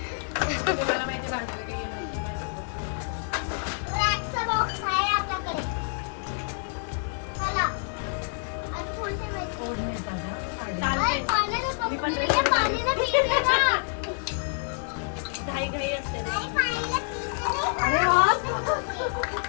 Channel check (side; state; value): right; silent; 55 dB below the other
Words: तुम्हाला माहिती भांडलं की चालतंय.